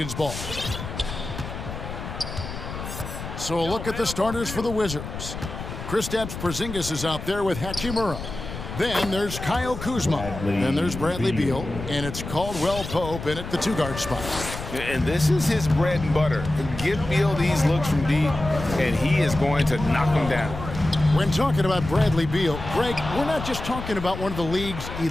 ball. So a look at the starters for the Wizards. Kristaps Porzingis is out there with Hachimura. Then there's Kyle Kuzma. Then there's Bradley Beal. And it's Caldwell Pope in at the two-guard spot. And this is his bread and butter. Give Beal these looks from deep, and he is going to knock them down. When talking about Bradley Beal, Greg, we're not just talking about one of the league's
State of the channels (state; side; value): noise; left; rumble, 9 dB below the sound